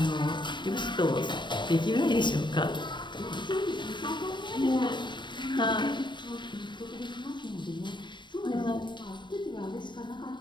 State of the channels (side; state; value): right; late; 0.22 ms